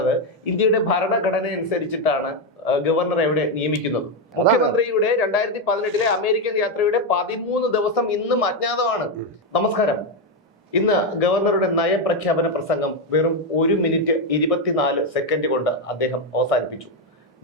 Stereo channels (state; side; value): normal; both; correlation 0.06